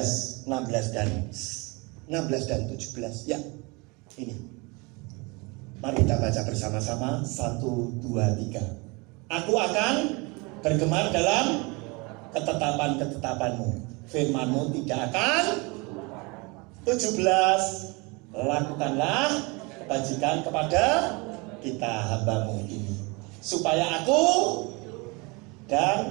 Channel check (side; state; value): left; quieter; 27.7 dB